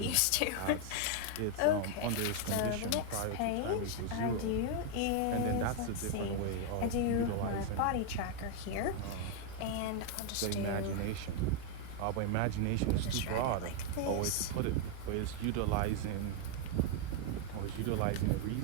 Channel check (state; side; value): different; both; correlation 0.01